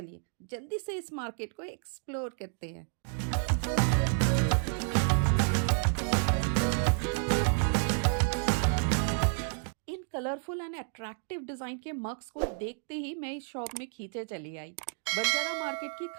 जल्दी से इस मार्केट को एक्सप्लोर करते हैं। इन कलरफुल एंड अट्रैक्टिव डिजाइन के मग्स को देखते ही मैं इस शॉप में खींचे चली आई। बंजारा मार्केट की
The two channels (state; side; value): silent; left; 57 dB below the other